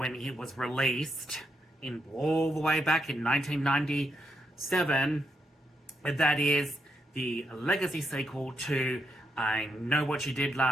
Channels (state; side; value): normal; both; correlation 0.80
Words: it was released in all the way back in 1997. That is the legacy sequel to I Know What You Did